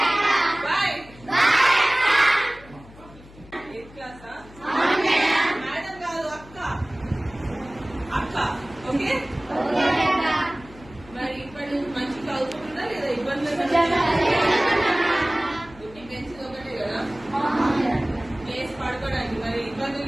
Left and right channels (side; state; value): left; noise; hum, 21 dB below the sound